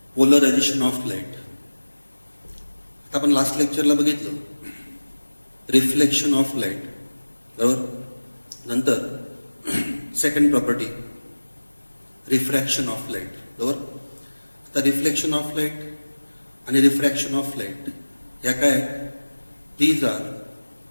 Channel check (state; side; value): inverted; both; correlation -1.00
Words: पोलरायझेशन ऑफ लाईट. आता आपण लास्ट लेक्चरला बघितलं रिफ्लेक्शन ऑफ लाईट, बरोबर. नंतर second property refraction of light, बरोबर. आता रिफ्लेक्शन ऑफ लाईट आणि रिफ्रॅक्शन ऑफ लाईट या काय, these are